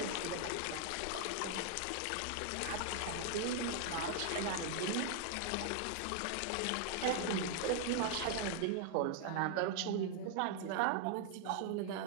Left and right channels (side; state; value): both; different; correlation 0.00